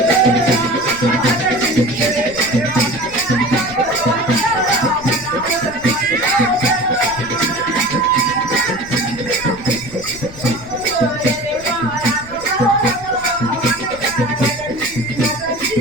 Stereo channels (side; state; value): left; noise; rumble, 18 dB below the sound